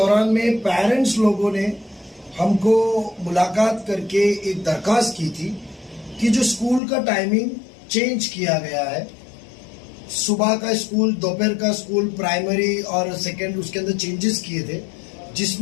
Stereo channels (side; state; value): right; drops out; at 6.8 s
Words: में पेरेंट्स लोगों ने हमको मुलाकात करके एक दरख्वास्त की थी कि जो स्कूल का टाइमिंग चेंज किया गया है, सुबह का स्कूल, दोपहर का स्कूल, प्राइमरी और सेकेंड, उसके अंदर चेंजेस किए थे,